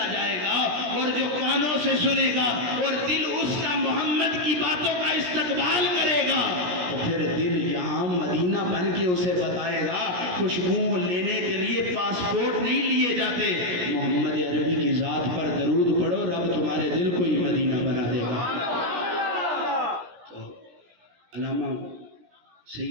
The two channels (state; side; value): late; left; 17 ms